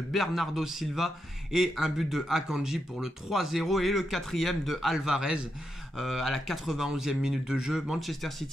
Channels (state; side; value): normal; both; correlation 0.84